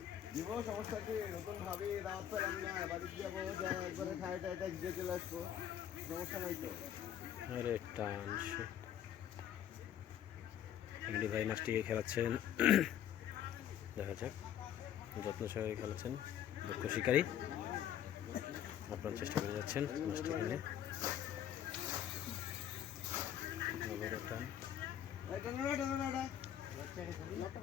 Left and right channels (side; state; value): right; quieter; 10.2 dB